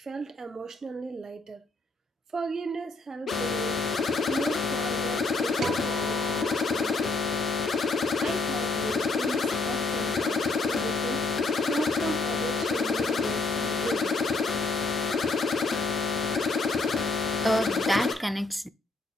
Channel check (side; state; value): right; quieter; 3.2 dB